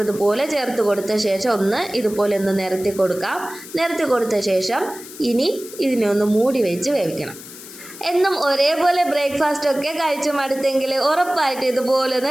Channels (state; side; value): noise; left; hiss, 15 dB below the sound